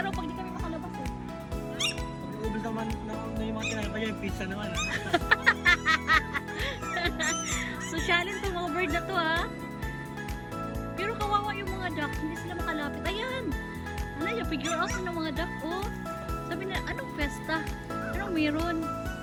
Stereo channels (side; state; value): both; identical; correlation 1.00